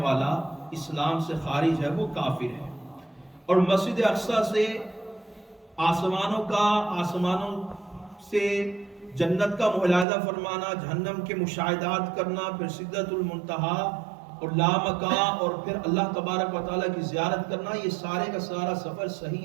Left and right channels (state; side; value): drops out; left; at 10.1 s